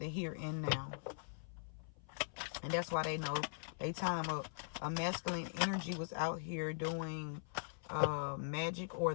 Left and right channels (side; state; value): right; silent; 50 dB below the other